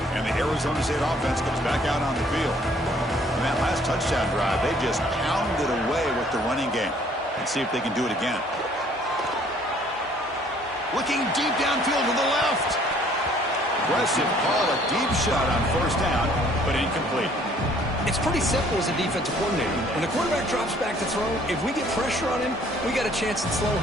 And the Arizona State offense comes back out on the field. In that last touchdown drive, they just pounded away with the running game. Let's see if they can do it again. Looking deep downfield to the left. Aggressive call, a deep shot on first down, but incomplete. It's pretty simple as a defensive coordinator. When the quarterback drops back to throw, if we get pressure on him, we got a chance to slow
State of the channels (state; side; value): normal; both; correlation 0.59